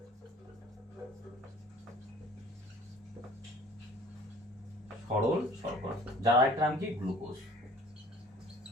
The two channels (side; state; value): both; normal; correlation 0.51